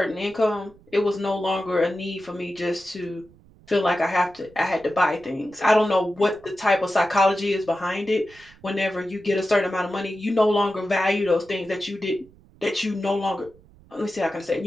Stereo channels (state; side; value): noise; right; rumble, 26 dB below the sound